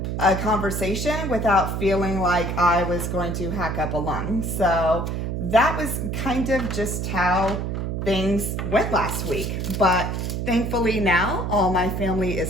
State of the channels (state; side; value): noise; right; hum, 2 dB below the sound